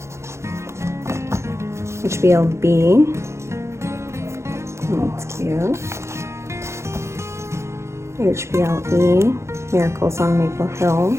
HBLB. That's cute. HBLE, Miracles on Maple Hill.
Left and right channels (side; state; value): left; late; 0.13 ms